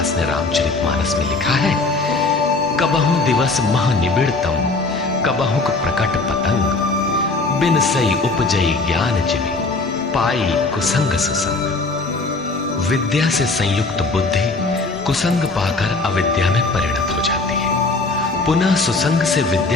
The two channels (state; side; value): quieter; right; 3.5 dB